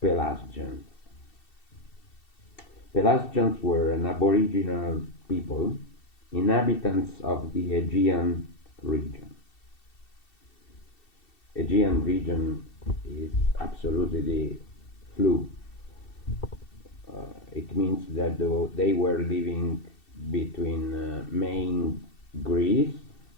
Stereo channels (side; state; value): right; late; 2.7 ms